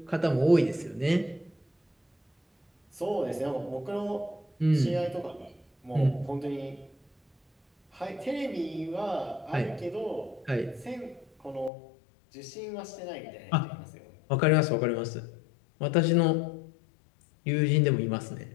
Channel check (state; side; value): drops out; right; at 11.7 s